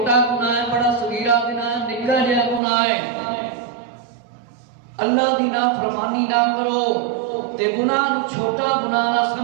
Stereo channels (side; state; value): left; drops out; at 2.6 s